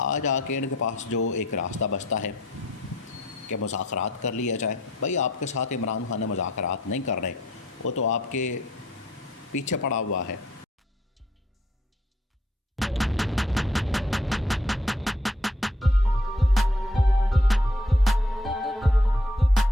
آج آ کے ان کے پاس جو ایک راستہ بچتا ہے کہ مذاکرات کر لیا جائے۔ بھائی آپ کے ساتھ عمران خان مذاکرات نہیں کر رہے، وہ تو آپ کے پیچھے پڑا ہوا ہے،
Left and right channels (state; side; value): normal; both; correlation 0.64